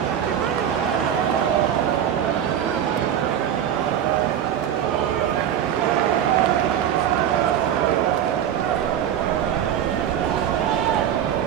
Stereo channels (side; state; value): left; quieter; 9.8 dB